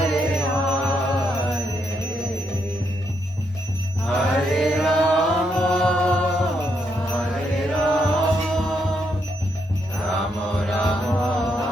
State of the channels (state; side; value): normal; both; correlation 0.78